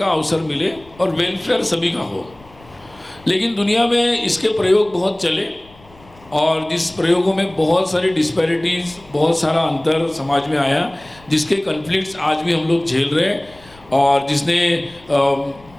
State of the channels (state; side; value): noise; left; rumble, 26 dB below the sound